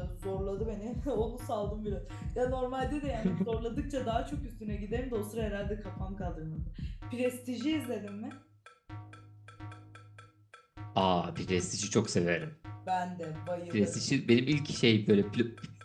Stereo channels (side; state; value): both; identical; correlation 1.00